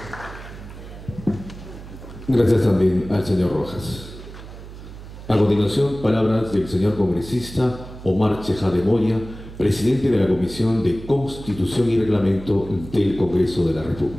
Gracias también al señor Rojas. A continuación, palabras del señor congresista Omar Chejade Moya, presidente de la Comisión de Constitución y Reglamento del Congreso de la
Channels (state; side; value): noise; right; hum, 14 dB below the sound